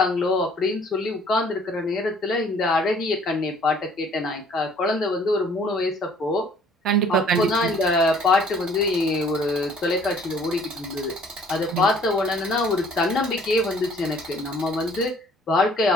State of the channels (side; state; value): both; normal; correlation 0.57